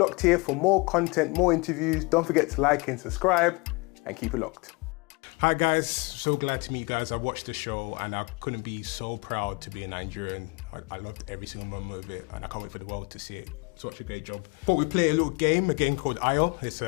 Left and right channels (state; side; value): quieter; right; 27.5 dB